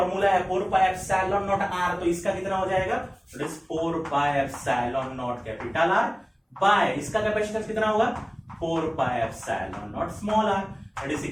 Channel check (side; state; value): both; identical; correlation 1.00